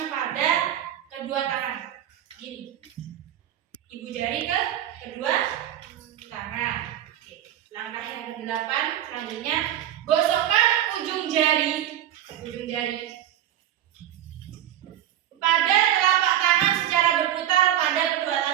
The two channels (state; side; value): quieter; left; 11.5 dB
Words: pada kedua tangan. Gini. Ibu jari ke kedua tangan. Oke. Langkah yang ke-8 selanjutnya, gosokkan ujung jari pada telapak tangan secara berputar pada kedua